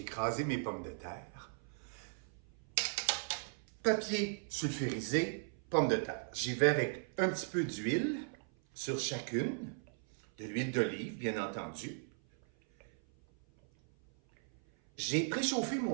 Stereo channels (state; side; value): silent; left; 53 dB below the other